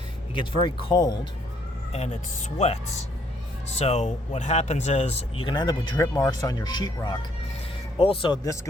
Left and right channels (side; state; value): both; normal; correlation 0.68